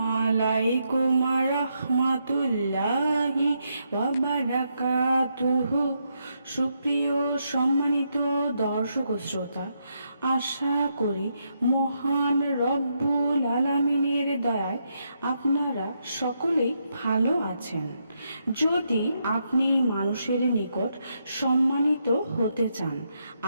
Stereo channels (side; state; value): both; inverted; correlation -0.80